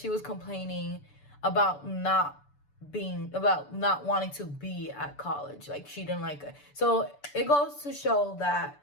was complaining about not wanting to be at college. Like, she didn't like it. So it goes to show that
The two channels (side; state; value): right; late; 6.9 ms